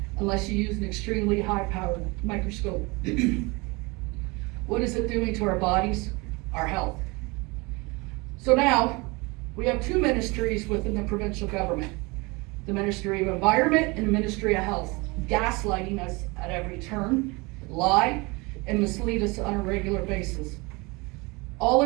unless you use an extremely high-powered microscope. What is it doing to our bodies? Our health. So now, we have two ministries within the provincial government. The Ministry of Environment and the Ministry of Health, gaslighting us at every turn, lie, and mislead us on a regular basis. All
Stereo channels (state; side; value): quieter; left; 26.1 dB